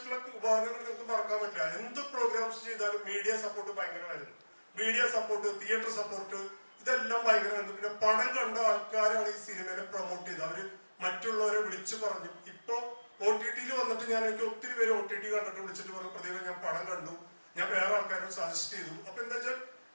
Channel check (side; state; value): both; inverted; correlation -1.00